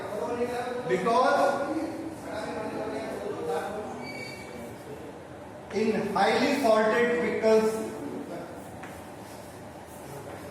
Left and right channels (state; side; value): identical; both; correlation 1.00